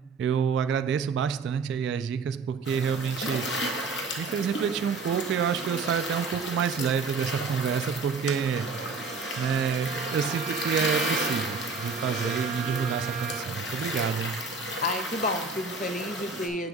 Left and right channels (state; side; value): quieter; left; 4.4 dB